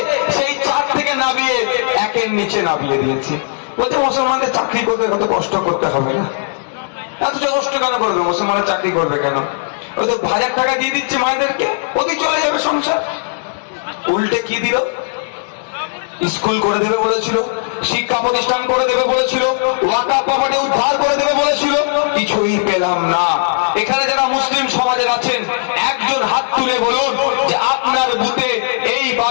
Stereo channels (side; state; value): right; silent; digital silence